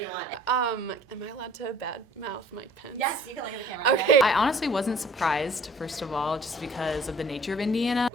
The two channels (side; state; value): both; normal; correlation 0.52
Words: want. Am I allowed to badmouth Mike Pence? Yes, you can look at the camera. Okay. I honestly wasn't surprised, first of all, just because of the nature of Indiana.